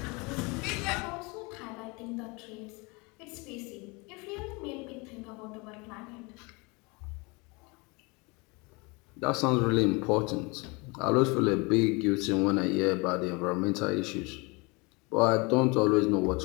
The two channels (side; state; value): right; quieter; 27.7 dB